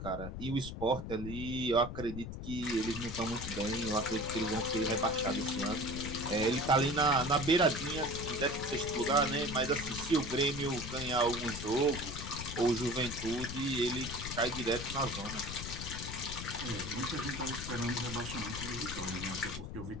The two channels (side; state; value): left; noise; rumble, 7 dB below the sound